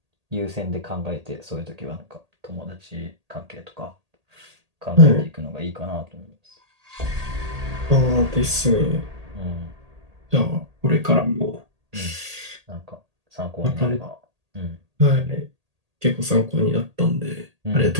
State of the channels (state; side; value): late; left; 1.8 ms